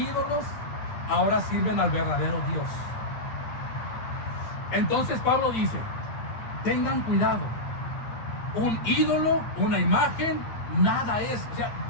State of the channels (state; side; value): late; right; 9.0 ms